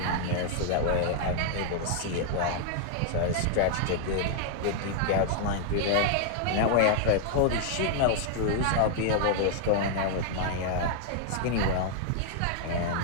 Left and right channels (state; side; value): different; both; correlation 0.00